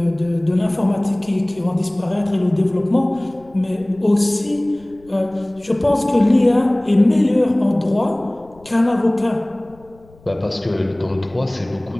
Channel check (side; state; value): left; noise; rumble, 27 dB below the sound